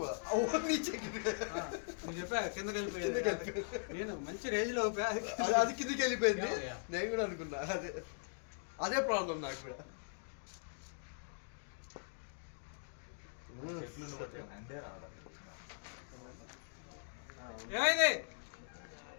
वो नीचे गिर गया. हाँ, मुझे पे కిందకి వెళ్ళిపోయింది. నేను మంచి రేంజ్ లో అది కిందికి వెళ్ళిపోయింది. Yeah. నేను కూడా అనుకున్నా అదే ప్రాబ్లం నాకు కూడా. ఏమైంది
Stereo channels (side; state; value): right; silent; digital silence